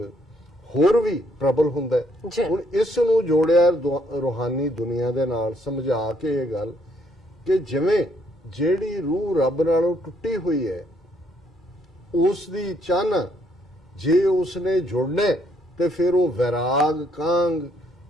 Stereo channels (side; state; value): both; normal; correlation 0.70